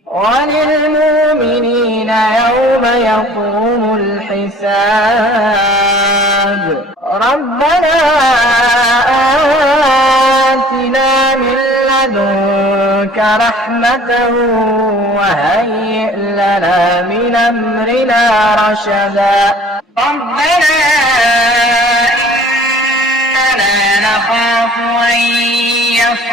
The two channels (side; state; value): both; normal; correlation 0.50